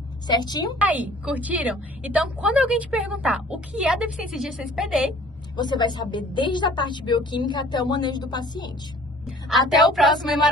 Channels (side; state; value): both; normal; correlation 0.51